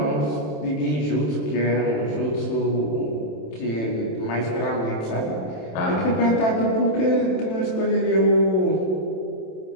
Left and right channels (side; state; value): right; late; 27 ms